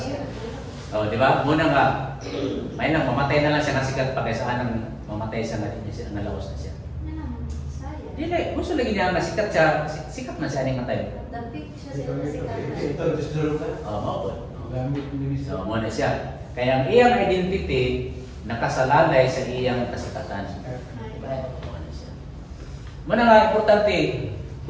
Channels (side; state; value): both; identical; correlation 1.00